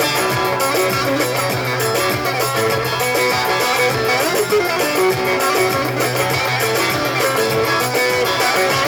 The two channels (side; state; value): both; identical; correlation 1.00